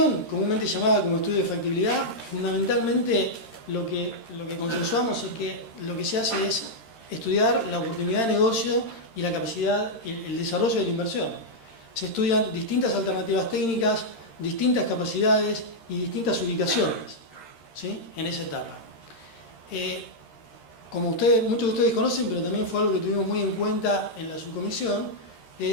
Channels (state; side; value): late; right; 13 ms